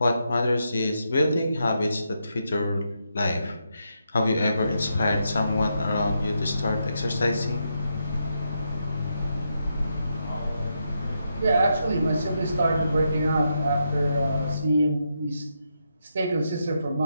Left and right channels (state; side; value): inverted; both; correlation -0.82